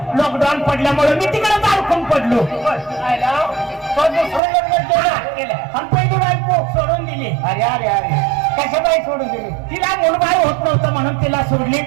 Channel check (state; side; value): drops out; left; at 4.4 s